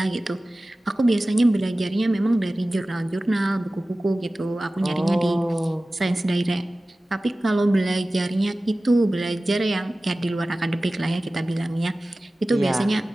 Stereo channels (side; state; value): both; normal; correlation 0.97